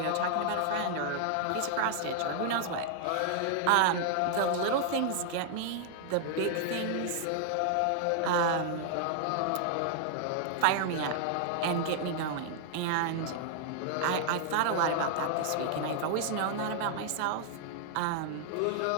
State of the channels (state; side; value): different; both; correlation 0.00